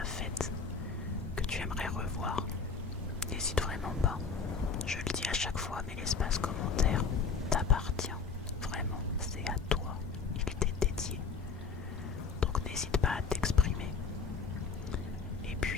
faites, que tu aimerais revoir. N'hésite vraiment pas. Je le dis à chaque fois, mais l'espace commentaire t'appartient. Vraiment, c'est à toi. Il t'est dédié. Donc n'hésite pas à t'exprimer. Et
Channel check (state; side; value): quieter; right; 5.2 dB